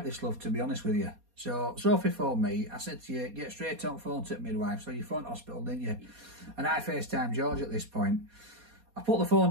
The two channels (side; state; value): left; late; 4.2 ms